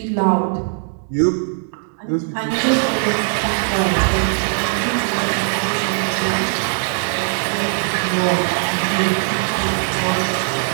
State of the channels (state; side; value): silent; left; digital silence